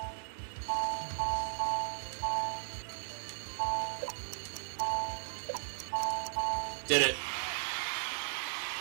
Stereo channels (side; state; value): left; silent; digital silence